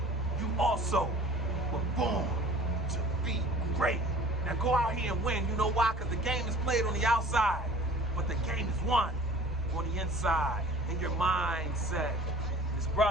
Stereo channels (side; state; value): both; normal; correlation 0.47